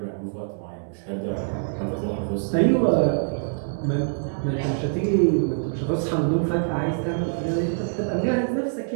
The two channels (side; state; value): left; silent; digital silence